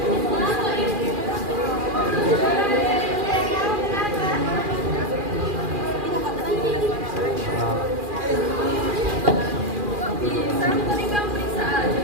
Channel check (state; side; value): late; left; 2.4 ms